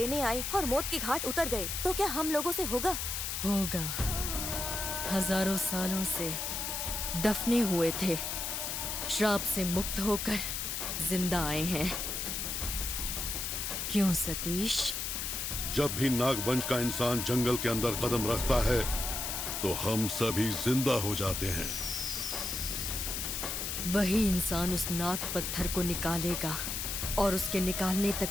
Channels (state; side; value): noise; left; hiss, 2 dB below the sound